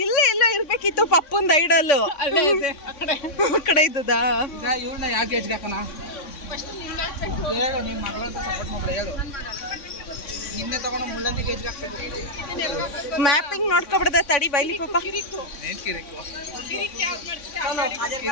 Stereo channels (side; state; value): right; late; 3.6 ms